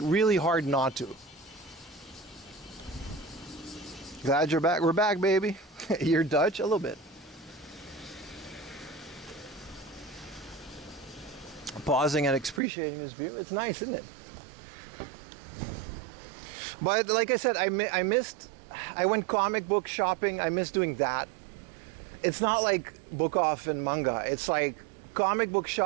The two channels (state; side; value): drops out; left; at 12.6 s